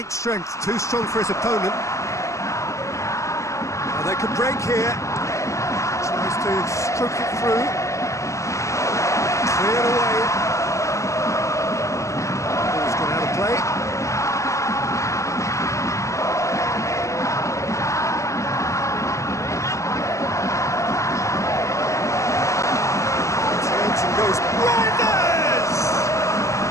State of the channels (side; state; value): right; late; 0.15 ms